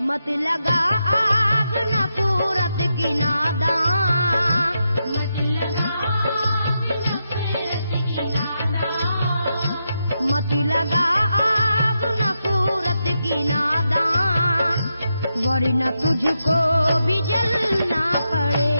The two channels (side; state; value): both; inverted; correlation -0.85